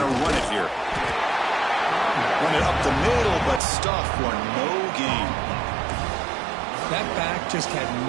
to run it here. Run it up the middle, but stuff for no gain. That back just had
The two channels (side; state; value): left; drops out; at 3.6 s